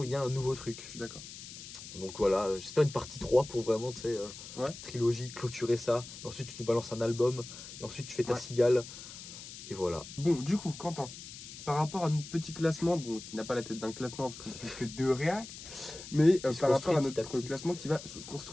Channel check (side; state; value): left; noise; hiss, 13 dB below the sound